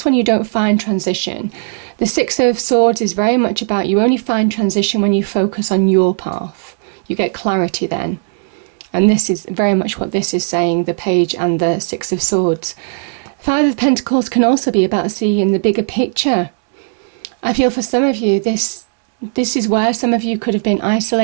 when you don't find transition. The Six of Swords is very much about you only find transition when you focus on your path. You get clarity then. And this is very much what this is saying, the Page and the Six of Swords. Five of Pentacles can also be about seeing the bigger picture. I feel for some of you, this is where some of you could have been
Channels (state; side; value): silent; left; digital silence